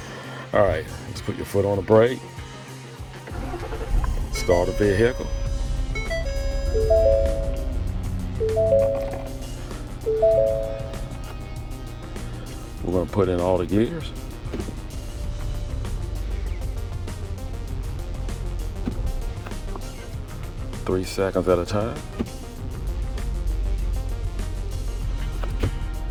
All right, let's put your foot on the brake. Start the vehicle. We're gonna put in all the gears. Three seconds at a time.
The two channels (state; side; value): identical; both; correlation 1.00